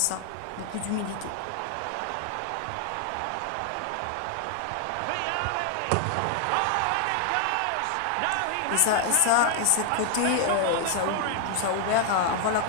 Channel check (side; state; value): both; different; correlation 0.00